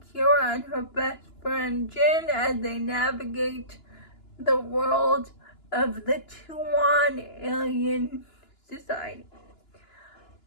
Kira and her best friend Jin as they navigate the world of the Tuan alien society.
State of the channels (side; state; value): right; late; 2.9 ms